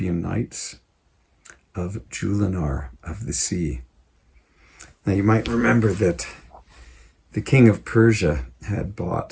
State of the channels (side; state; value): both; identical; correlation 1.00